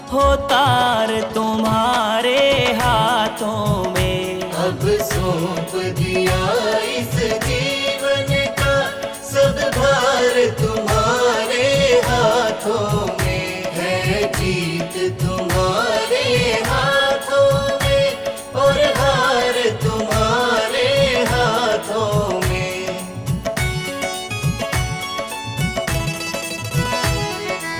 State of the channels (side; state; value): both; identical; correlation 1.00